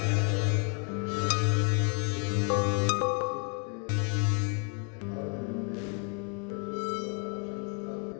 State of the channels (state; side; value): quieter; right; 38.1 dB